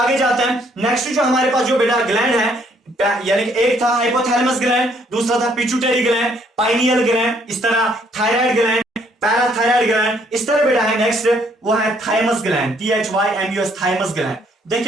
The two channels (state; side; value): normal; both; correlation 0.66